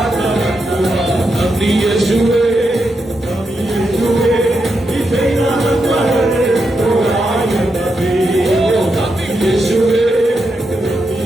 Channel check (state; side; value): normal; both; correlation 0.84